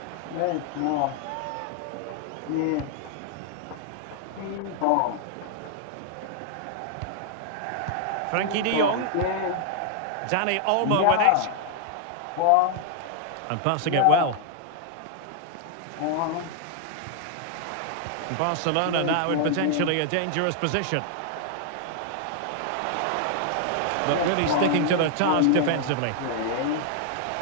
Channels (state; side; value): different; both; correlation 0.00